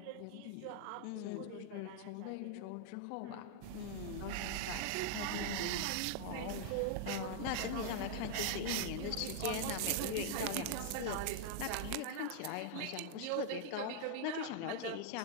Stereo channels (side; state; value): both; different; correlation -0.01